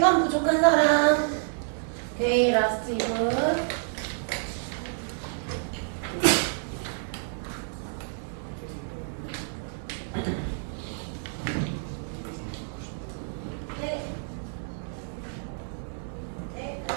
부족한 사람. 오케이, 라스트 2분. 네. 네,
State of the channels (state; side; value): silent; left; digital silence